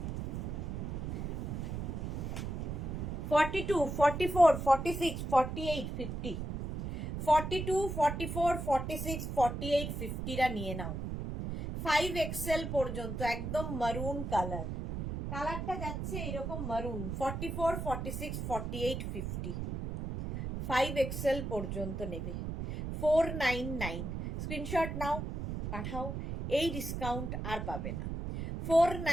42, 44, 46, 48, 50, 42, 44, 46, 48, 50 রা নিয়ে নাও। 5XL পর্যন্ত, একদম মারুন কালার, কালারটা যাচ্ছে এরকম মারুন। 44, 46, 48, 50, 5XL পর্যন্ত নেবে। 499। স্ক্রিনশট নাও, পাঠাও, এই ডিসকাউন্ট আর পাবে না।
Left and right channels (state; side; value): noise; right; rumble, 4 dB below the sound